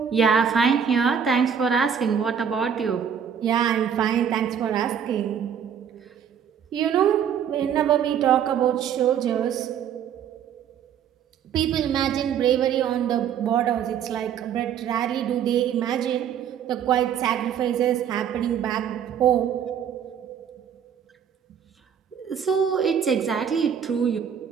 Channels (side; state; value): left; quieter; 8.2 dB